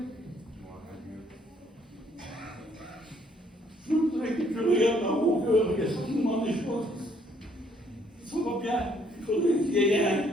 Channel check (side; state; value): both; normal; correlation 0.65